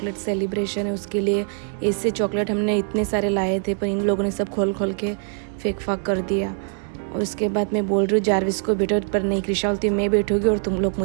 सेलिब्रेशन है उसके लिए, ऐसे चॉकलेट हमने इतने सारे लाए थे पर इन लोगों ने सब खोल खोल के फेंक फाक कर दिया। और उसके बाद मैं बोल रही हूँ जारविस को बैठो, पर नहीं कृषा बोलती मैं बैठूँगी और तुम लोग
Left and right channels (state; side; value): silent; left; 63 dB below the other